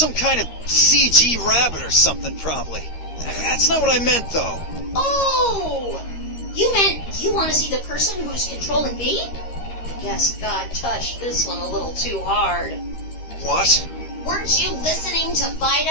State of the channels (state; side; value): late; right; 13 ms